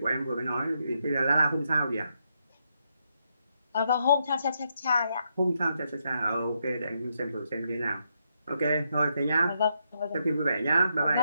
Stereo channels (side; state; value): both; inverted; correlation -0.80